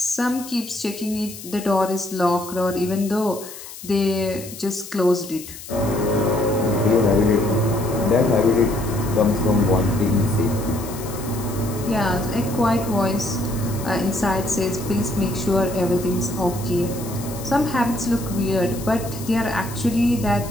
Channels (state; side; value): noise; left; hiss, 14 dB below the sound